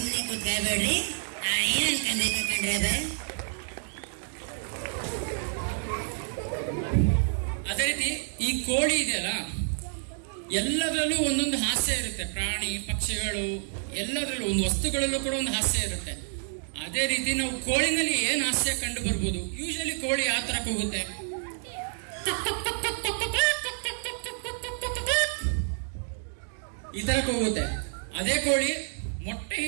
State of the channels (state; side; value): silent; left; digital silence